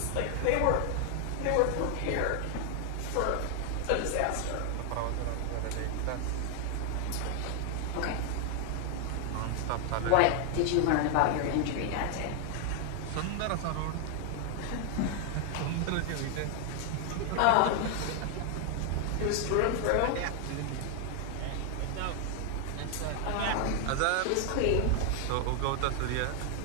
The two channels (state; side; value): different; both; correlation 0.00